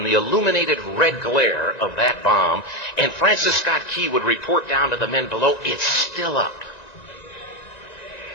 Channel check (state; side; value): late; right; 1.9 ms